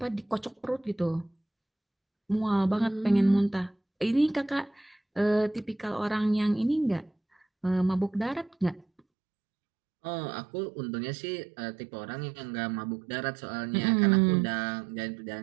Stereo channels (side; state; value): left; drops out; at 9.0 s